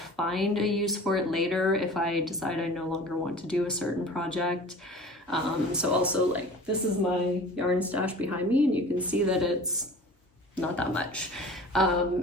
a use for it later if I decide I no longer want to do a certain project. So also, like, this is my yarn stash behind me, and you can see that it's not that much.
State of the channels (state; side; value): normal; both; correlation 0.41